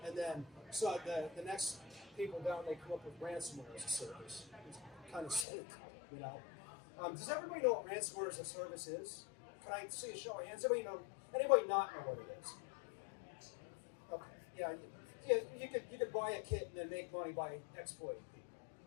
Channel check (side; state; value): right; drops out; at 5.5 s